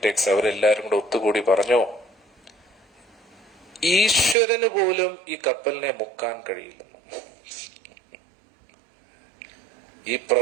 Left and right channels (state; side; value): drops out; left; at 4.4 s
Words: അവരെല്ലാരും കൂടെ ഒത്തുകൂടി പറഞ്ഞു, ഈശ്വരന് പോലും ഈ കപ്പലിനെ മുക്കാൻ കഴിയില്ലെന്നു. ഈ